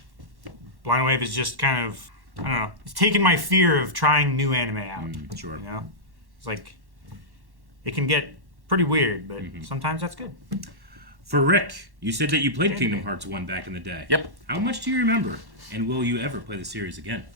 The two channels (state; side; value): late; left; 1.1 ms